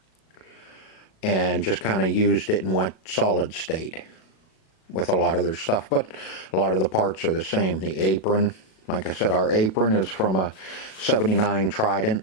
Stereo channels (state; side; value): late; right; 37 ms